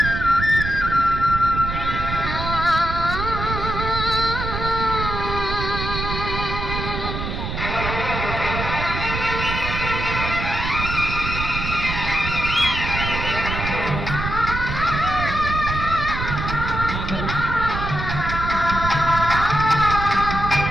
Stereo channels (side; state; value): right; noise; rumble, 4 dB below the sound